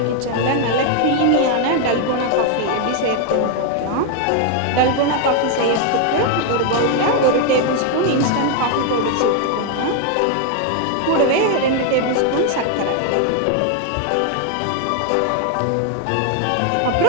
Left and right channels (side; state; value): both; different; correlation 0.01